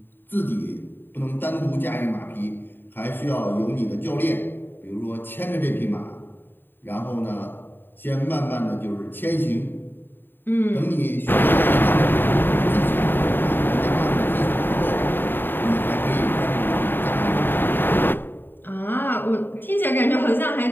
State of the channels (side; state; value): right; late; 0.096 ms